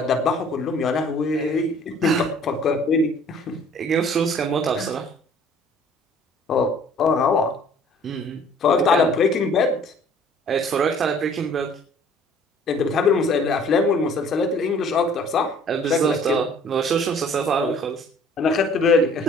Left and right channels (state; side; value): normal; both; correlation 0.54